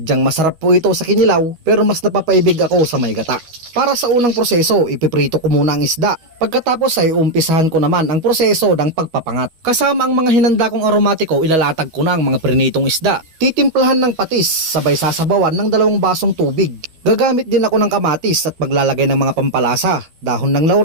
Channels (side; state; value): left; late; 12 ms